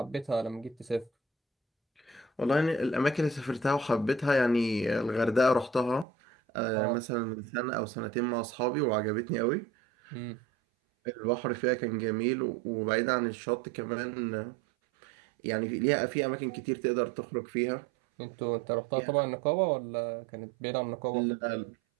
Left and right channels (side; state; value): left; drops out; at 6.1 s